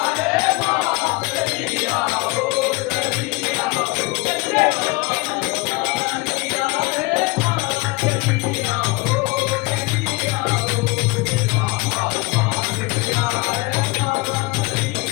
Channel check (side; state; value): right; quieter; 24.8 dB